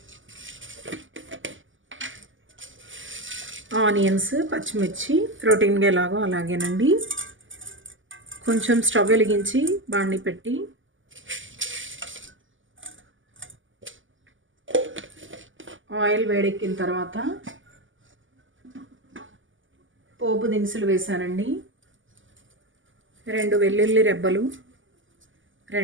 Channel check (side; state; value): left; late; 0.57 ms